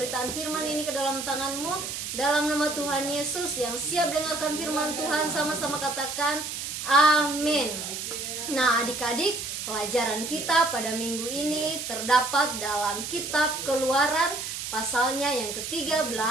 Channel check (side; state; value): right; noise; hiss, 6 dB below the sound